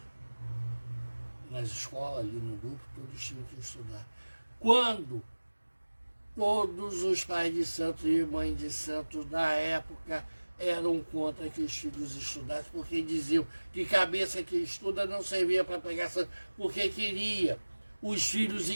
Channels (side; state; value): both; inverted; correlation -1.00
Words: Nas escolas, ali no grupo, todos tinham que estudar. Quando todos os pais de santos e mães de santos da época eram contra que os filhos estudassem, porque diziam que cabeça que estuda não servia para pegar santo, porque queria os filhos